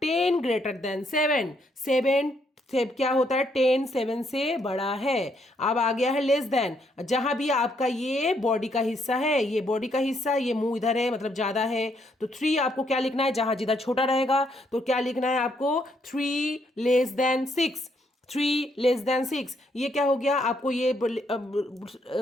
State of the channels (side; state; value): both; normal; correlation 0.73